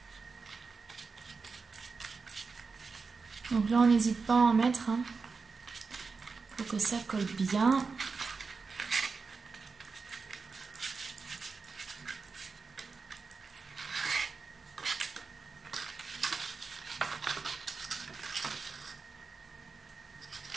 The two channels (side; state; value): left; quieter; 4.7 dB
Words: Donc là, on n'hésite pas à en mettre, hein, pour que ça colle bien.